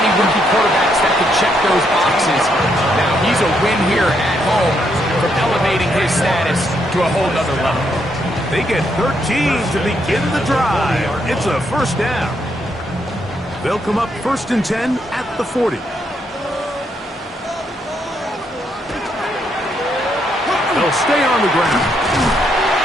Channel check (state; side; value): normal; both; correlation 0.76